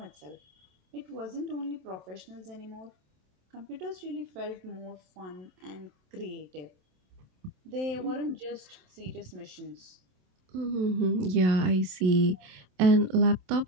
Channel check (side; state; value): left; late; 27 ms